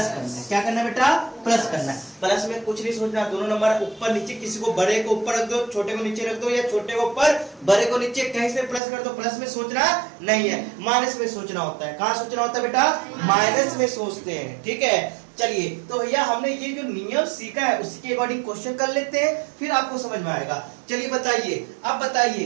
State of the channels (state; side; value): drops out; left; at 8.8 s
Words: करना है। क्या करना है बेटा, प्लस करना है। प्लस में कुछ नहीं सोचना, दोनों नंबर ऊपर नीचे, किसी को बड़े को ऊपर रख दो, छोटे को नीचे रख दो, या छोटे को ऊपर बड़े को नीचे, कहीं से प्लस कर दो। प्लस में सोचना नहीं है, माइनस में सोचना होता है। कहाँ सोचना होता है बेटा, माइनस में सोचते हैं। ठीक है, चलिए तो भैया हमने ये जो नियम सीखा है उसी के अकॉर्डिंग क्वेश्चन कर लेते हैं, फिर आपको समझ में आएगा। चलिए बताइए, अब